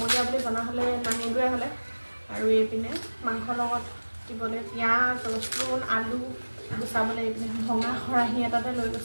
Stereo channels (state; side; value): inverted; both; correlation -1.00